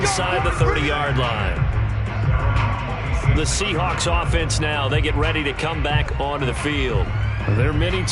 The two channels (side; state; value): both; identical; correlation 1.00